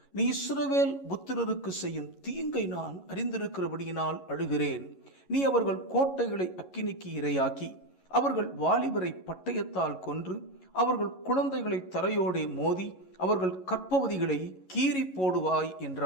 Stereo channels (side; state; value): right; late; 11 ms